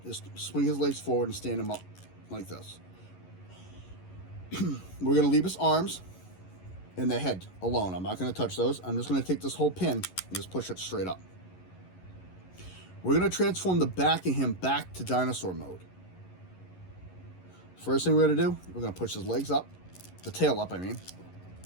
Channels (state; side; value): late; right; 11 ms